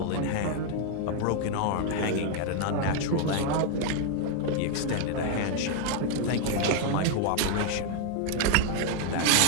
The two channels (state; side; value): different; both; correlation 0.00